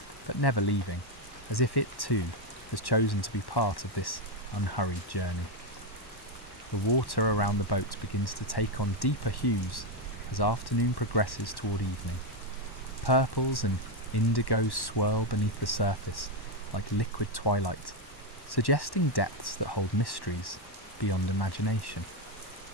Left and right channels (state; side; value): late; right; 1.1 ms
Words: but never leaving, as if it too has chosen to be part of this unhurried journey. The water around the boat begins to take on deeper hues as afternoon progresses toward evening. Purples and indigos swirl beneath the surface like liquid twilight, suggesting depths that hold mysteries beyond imagination.